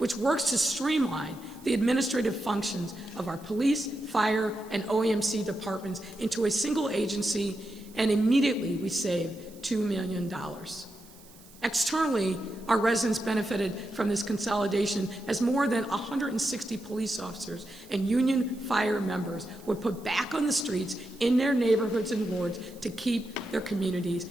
works to streamline the administrative functions of our police, fire, and OEMC departments into a single agency, and immediately we saved $2 million. Externally, our residents benefited from this consolidation as more than 160 police officers and union fire members were put back on the streets in their neighborhoods and wards to keep their communities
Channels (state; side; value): noise; right; hiss, 23 dB below the sound